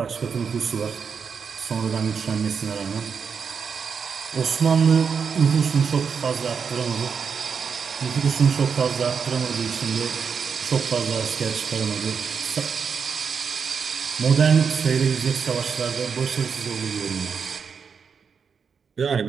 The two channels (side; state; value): left; quieter; 6.2 dB